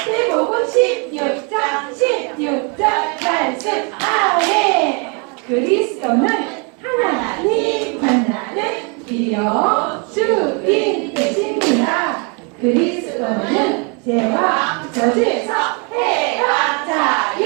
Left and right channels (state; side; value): quieter; left; 34.8 dB